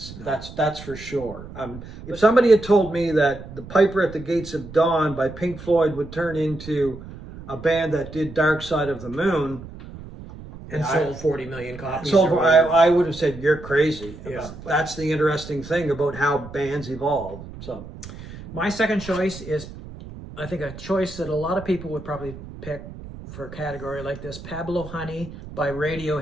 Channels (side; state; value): right; noise; rumble, 14 dB below the sound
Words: No. That's for sure. If somebody had told me that The Piper at the Gates of Dawn by Pink Floyd would turn into a band that did Dark Side of the Moon, and sold 40 million copies. I would have said, you're crazy. Yeah, that's the interesting thing about how bands evolve. So, my second choice is, I think, a choice that a lot of people would probably pick for a category like this. Pablo Honey by